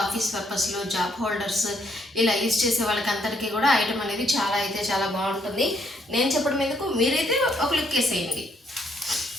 ఆఫీస్ పర్పస్లో జాబ్ హోల్డర్స్ ఇలా యూజ్ చేసే వాళ్ళకి అందరికీ కూడా ఐటమ్ అనేది చాలా బాగుంటుంది. నేను చెప్పడం ఎందుకు, మీరైతే ఒక లుక్ వేసేయండి.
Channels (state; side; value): normal; both; correlation 0.71